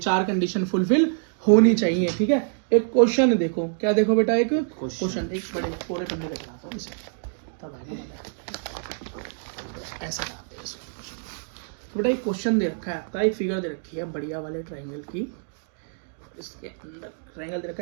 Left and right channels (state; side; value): silent; left; digital silence